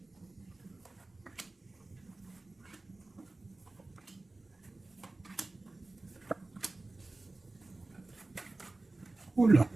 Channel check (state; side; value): quieter; left; 3.1 dB